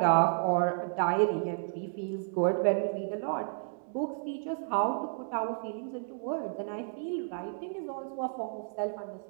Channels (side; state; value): left; silent; digital silence